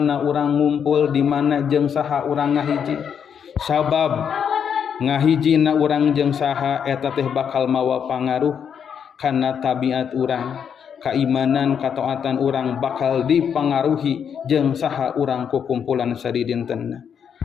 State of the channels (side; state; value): right; quieter; 7.7 dB